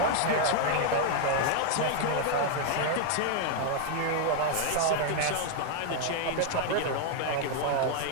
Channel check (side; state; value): both; different; correlation 0.00